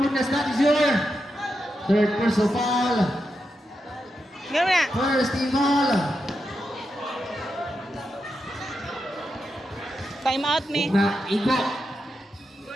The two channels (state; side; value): normal; both; correlation 0.87